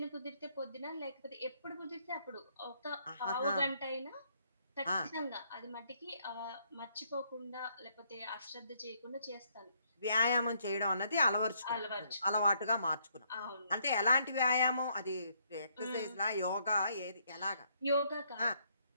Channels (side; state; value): both; inverted; correlation -0.70